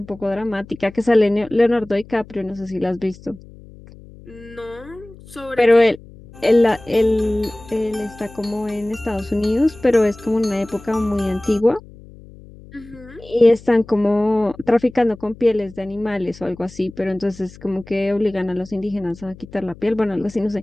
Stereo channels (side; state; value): left; noise; hum, 20 dB below the sound